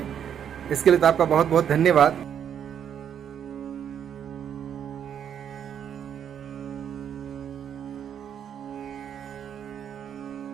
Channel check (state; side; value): quieter; left; 8.8 dB